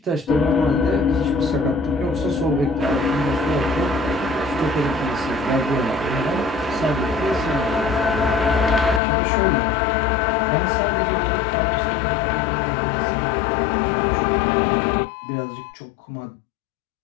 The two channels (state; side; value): drops out; right; at 9.0 s